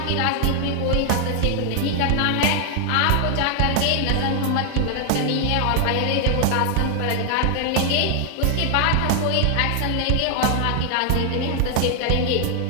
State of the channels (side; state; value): both; different; correlation 0.00